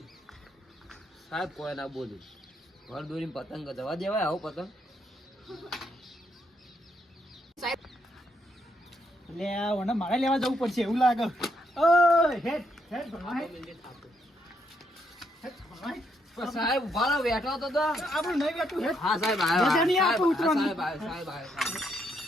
સાહેબ કોઈ ના બોલું, પર દોરી પતંગ જવા દેવાય આવો પતંગ. સાહેબ એટલે આ ઓને મારે લેવા જવું પડશે એવું લાગે. ઓય હેડ હેડ ભણવા હેડ. હેડ ભણવા હેડ. સાહેબ ઉભા રહો, બેઠો તો આપણું નહીં બેઠું હેડ. હા સાહેબ આવ્યો, રજા નહીં આપો ઉતરવાની. સાહેબ આવ્યો, સાહેબ આવ્યો,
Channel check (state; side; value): normal; both; correlation 0.76